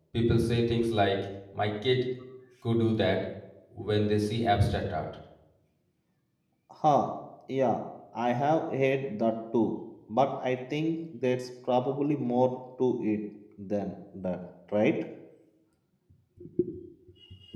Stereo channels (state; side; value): identical; both; correlation 1.00